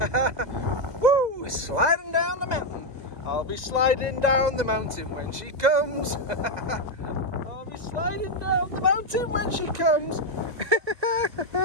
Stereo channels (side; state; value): left; late; 2.0 ms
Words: Woo! Sliding down the mountain. I'll be sliding down the mountain when she comes. I'll be sliding down the mountain when she comes.